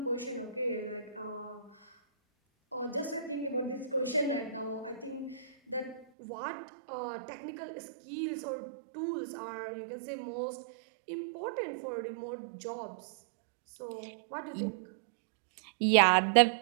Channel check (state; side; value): drops out; left; at 6.1 s